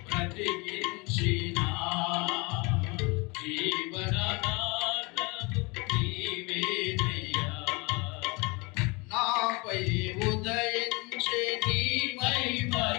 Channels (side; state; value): right; quieter; 27.7 dB